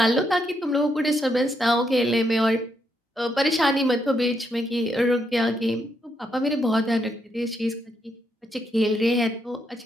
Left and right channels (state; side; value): normal; both; correlation 0.78